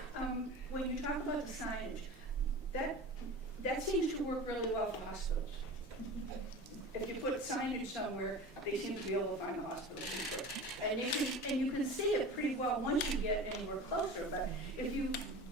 When you talk about the signage, that seems to work really well for hospitals. If you put signage somewhere, they seem to be able to find a hospital. And you can see it pretty well once you get anywhere closer, but if you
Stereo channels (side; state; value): both; normal; correlation 0.34